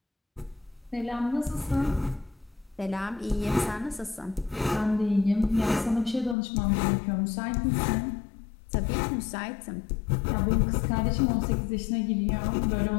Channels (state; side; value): drops out; right; at 6.4 s